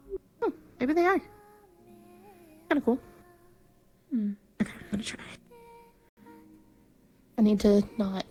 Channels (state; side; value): identical; both; correlation 1.00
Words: Oh, maybe they are. Kinda cool. Hmm. Okay, I'm gonna try. I need to not